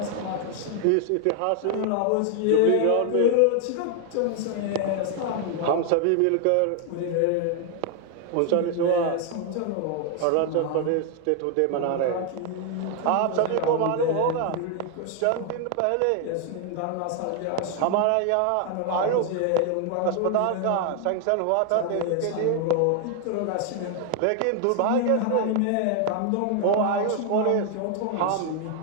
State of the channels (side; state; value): both; different; correlation 0.00